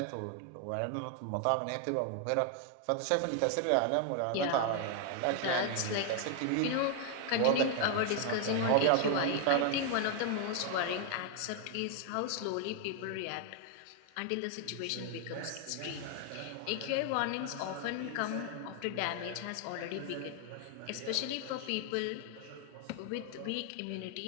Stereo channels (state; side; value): different; both; correlation 0.00